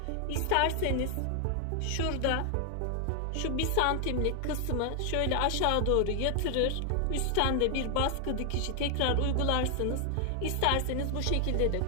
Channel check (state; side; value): different; both; correlation 0.00